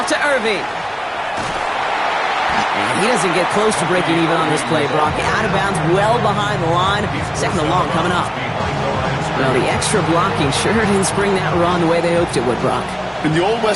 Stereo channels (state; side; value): identical; both; correlation 1.00